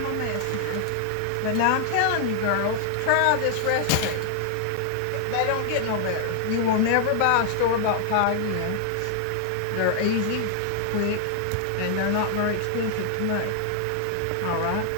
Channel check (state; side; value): different; both; correlation 0.00